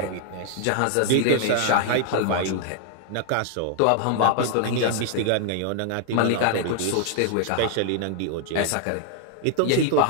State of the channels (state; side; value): different; both; correlation 0.00